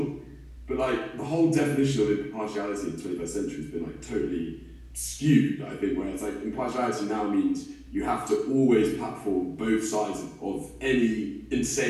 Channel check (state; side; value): identical; both; correlation 1.00